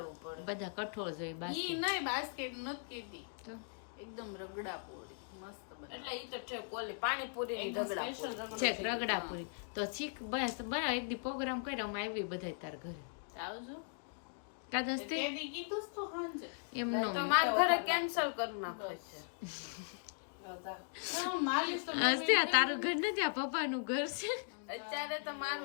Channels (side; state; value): right; silent; digital silence